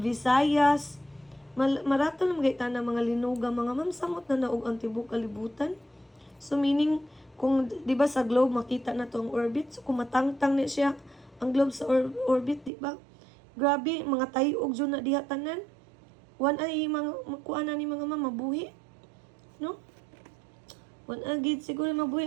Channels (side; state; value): left; drops out; at 12.7 s